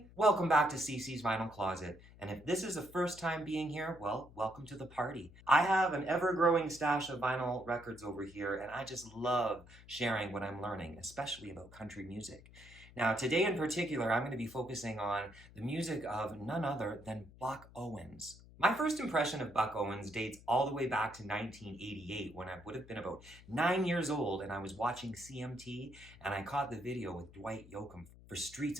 welcome back to CC's Vinyl Closet. And if this is the first time being here, well, welcome to the party. I have an ever-growing stash of vinyl records over here, and I just love sharing what I'm learning, especially about country music. Now, today in particular, I'm going to be focusing on the music of none other than Buck Owens. My first impression of Buck Owens dates all the way back to 1988 when I would have been about 9 years old and I was watching CMT and I caught the video with Dwight Yoakam for Streets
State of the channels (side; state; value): left; noise; hum, 21 dB below the sound